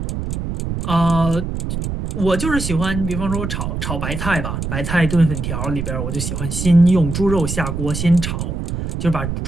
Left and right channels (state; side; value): noise; right; rumble, 4 dB below the sound